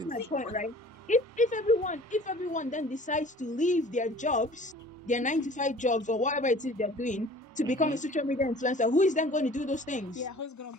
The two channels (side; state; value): both; normal; correlation 0.48